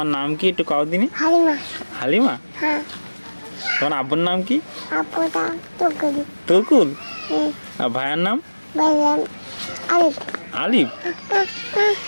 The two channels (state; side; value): inverted; both; correlation -1.00